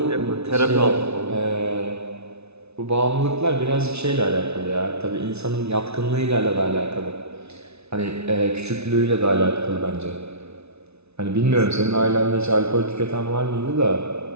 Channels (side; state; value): left; late; 0.80 ms